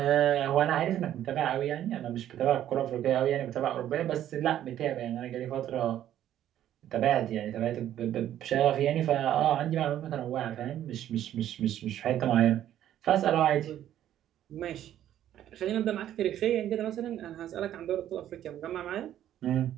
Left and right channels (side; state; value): left; quieter; 11.6 dB